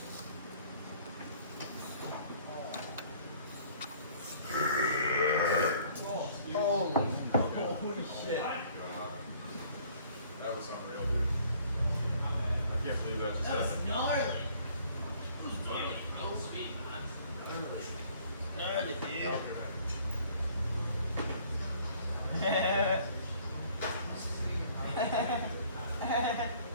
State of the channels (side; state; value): both; inverted; correlation -0.57